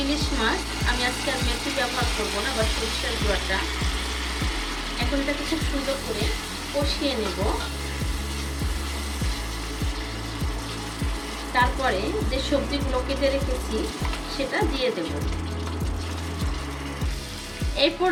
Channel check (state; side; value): identical; both; correlation 1.00